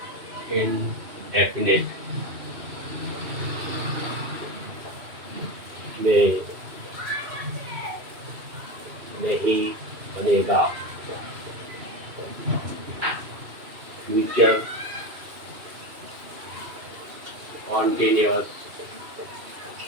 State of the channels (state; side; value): late; left; 2.6 ms